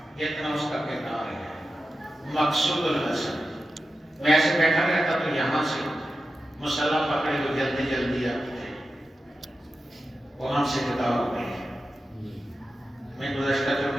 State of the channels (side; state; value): both; normal; correlation 0.92